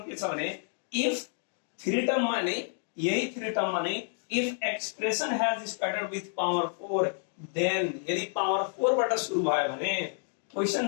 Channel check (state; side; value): silent; right; 58 dB below the other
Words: के छ भने इफ थ्री टर्म मा नै यही थ्री टर्म मा नै if expression has started with power 4 then यदि पावर 4 बाट सुरु भयो भने